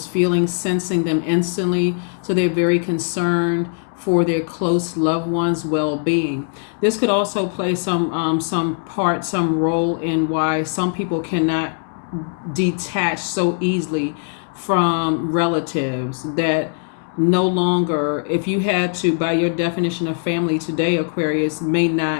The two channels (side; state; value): right; silent; 65 dB below the other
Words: feelings, sensing them instantly. So they're very concerned for their close loved ones' well-being. This could also play some role in why some people cannot detach so easily from relatives that no longer, if you had to, by your definition of family today, Aquarius, may